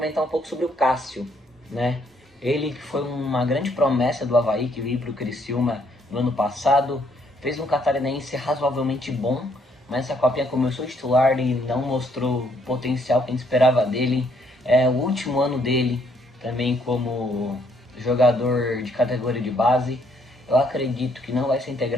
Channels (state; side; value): normal; both; correlation 0.69